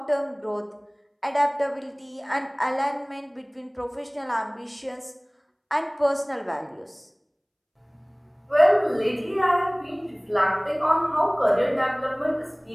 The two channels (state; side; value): identical; both; correlation 1.00